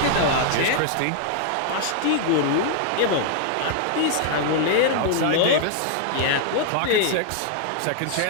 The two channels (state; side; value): different; both; correlation -0.01